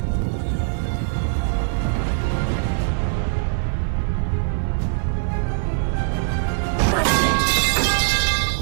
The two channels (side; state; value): left; silent; 55 dB below the other